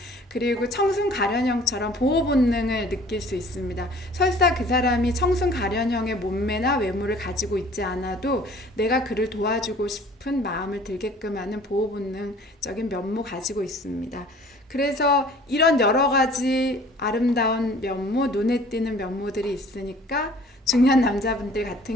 그리고 청순가련형처럼 보호 본능을 느낄 수 있습니다. 설사 그 사람이 청순가련형의 몸매나 외모를 가지고 있지 않아도 내가 그를 도와주고 싶은 마음을 들게끔 하는 보호 본능적인 면모 가지고 있습니다. 그래서 이런 여러 가지 아름다운 면모, 눈에 띄는 면모들이 있으니까 중년 남자분들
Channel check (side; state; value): both; normal; correlation 0.51